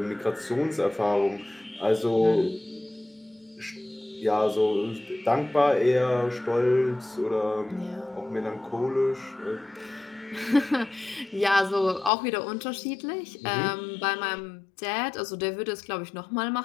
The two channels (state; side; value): drops out; right; at 12.1 s